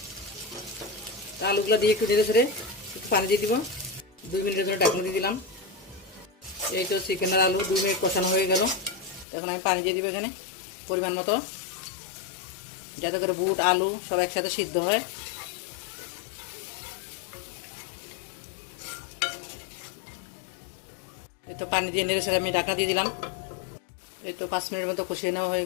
আলুগুলো দিয়ে একটু নেড়ে ছেড়ে একটু পানি দিয়ে দিব। 2 মিনিটের জন্য ঢাকনা দিয়ে দিলাম। এই তো চিকেন আর আলু 2 মিনিট কষানো হয়ে গেল। এখন আমি পানি দিয়ে দিব এখানে পরিমাণ মতো, যাতে করে বুট আলু সব একসাথে সিদ্ধ হয়। এই তো পানি দিয়ে নেড়ে ছেড়ে আমি ঢাকা দিয়ে দিলাম। এই তো 5 মিনিটের মতো কষিয়ে নেওয়া হয়ে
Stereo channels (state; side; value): drops out; right; at 9.2 s